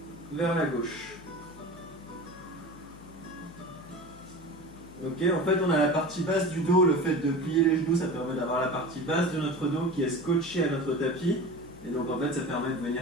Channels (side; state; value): left; noise; hum, 21 dB below the sound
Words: vers la gauche. Ok, en fait on a la partie basse du dos, le fait de plier les genoux, ça permet d'avoir la partie basse de notre dos qui est scotchée à notre tapis. Et donc en fait ça permet de